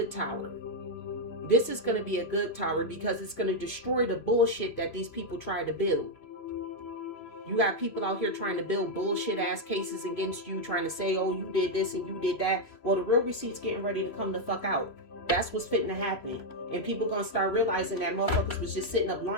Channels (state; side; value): late; right; 3.0 ms